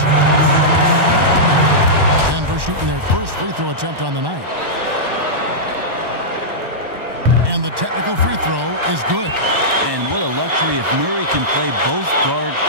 Denver shooting their first free throw attempt on the night. And the technical free throw is good. And what a luxury if Murray can play both guard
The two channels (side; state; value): left; late; 1.1 ms